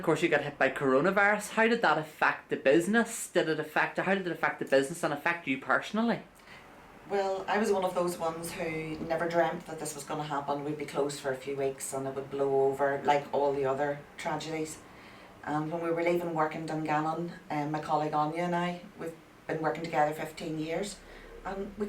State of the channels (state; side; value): identical; both; correlation 1.00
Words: course you got hit by coronavirus. How did that affect the business? How did it affect the business and affect you personally? Well, I was one of those ones who never dreamt that this was going to happen. We'd be closed for a few weeks and it would blow over like all the other tragedies. And when we were leaving work in Dungannon, my colleague Anya and I, we've been working together 15 years, and we